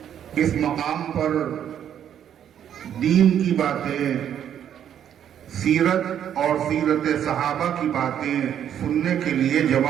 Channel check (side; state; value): left; quieter; 9.6 dB